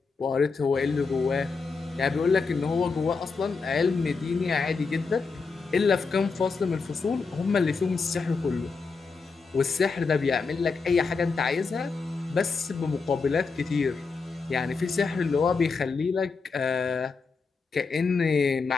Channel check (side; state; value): right; quieter; 4.7 dB